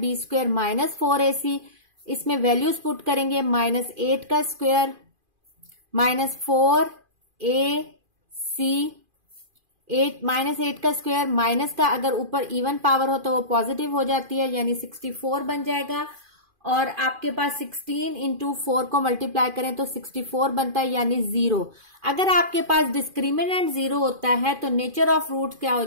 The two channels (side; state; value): left; late; 2.5 ms